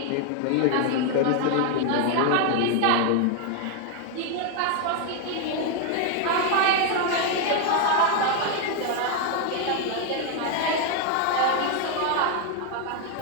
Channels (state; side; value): different; both; correlation 0.01